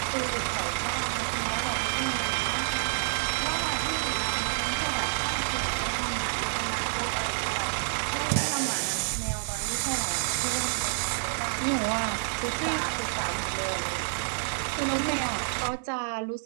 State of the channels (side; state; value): left; silent; digital silence